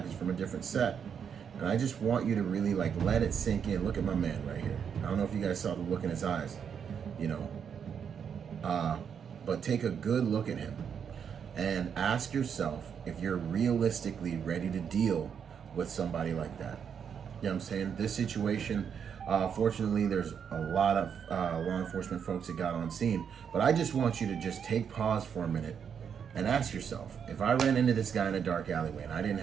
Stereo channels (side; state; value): left; quieter; 7.4 dB